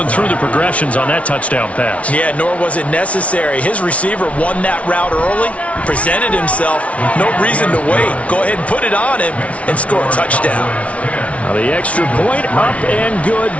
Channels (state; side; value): late; right; 0.064 ms